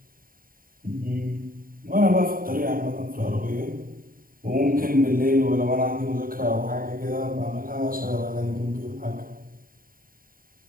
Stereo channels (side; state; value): left; late; 0.41 ms